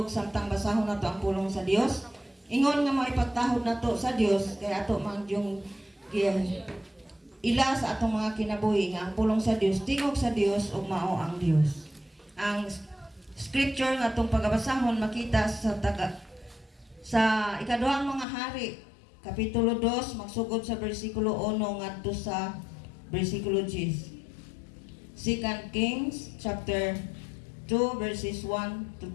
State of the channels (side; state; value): right; drops out; at 18.2 s